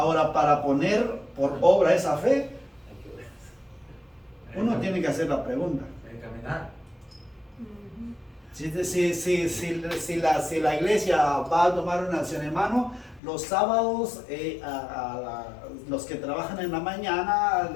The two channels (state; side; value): drops out; right; at 13.2 s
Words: para poner por obra esa fe, uno tiene que hacer la pregunta. Hay que caminar. Si la iglesia va a tomar una acción, hermano, los sábados, los que trabajan en la mañana,